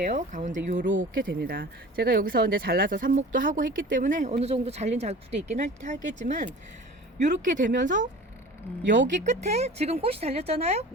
가운데 요렇게 됩니다. 제가 여기서 이제 잘라서 삽목도 하고 했기 때문에 어느 정도 잘린 자국도 있긴 하겠지만 요렇게 되면서 여기 끝에 지금 꽃이 달렸잖아요.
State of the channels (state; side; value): normal; both; correlation 0.41